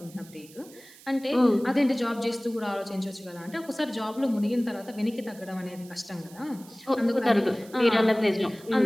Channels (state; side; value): noise; right; hiss, 22 dB below the sound